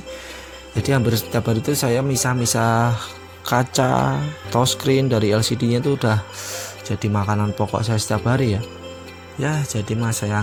Jadi hampir setiap hari itu saya misah-misah kaca touchscreen dari LCD-nya itu udah jadi makanan pokok saya setiap hari ya. Ya, jadi mas saya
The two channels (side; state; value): both; identical; correlation 1.00